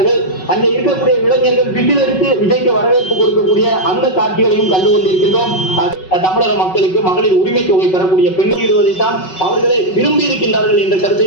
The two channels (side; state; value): right; late; 5.4 ms